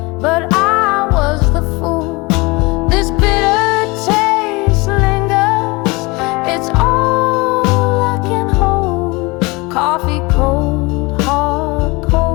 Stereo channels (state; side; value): quieter; right; 25.0 dB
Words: but I was the fool. This bitter taste lingers. It's all I can hold. Coffee cold, hard,